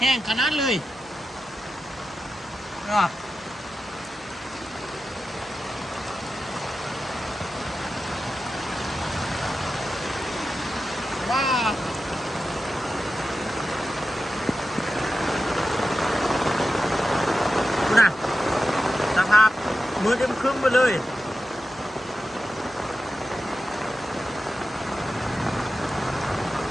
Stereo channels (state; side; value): noise; right; hum, 27 dB below the sound